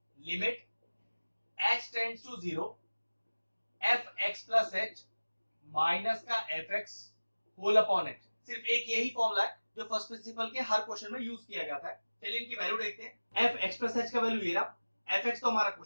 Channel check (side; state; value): both; inverted; correlation -1.00